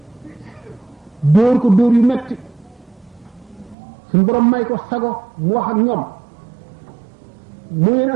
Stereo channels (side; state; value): left; drops out; at 3.8 s